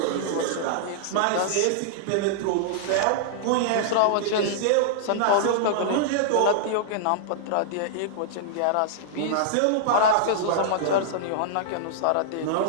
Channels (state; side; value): different; both; correlation -0.01